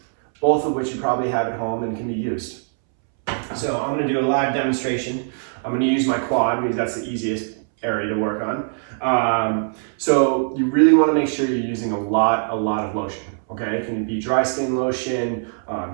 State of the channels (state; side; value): silent; left; 64 dB below the other